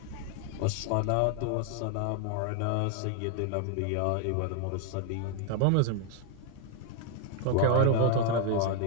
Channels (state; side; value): different; both; correlation 0.00